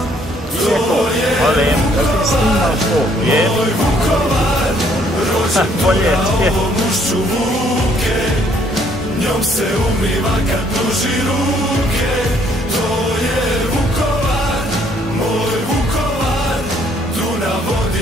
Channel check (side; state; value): both; normal; correlation 0.65